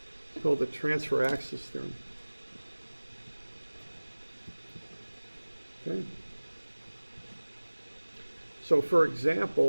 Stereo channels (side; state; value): both; inverted; correlation -1.00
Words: It's called the transfer axis theorem. Okay. So for